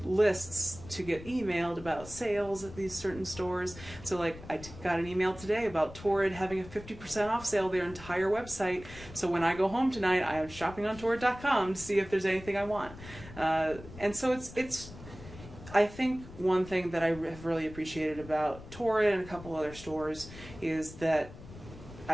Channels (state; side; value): noise; left; rumble, 16 dB below the sound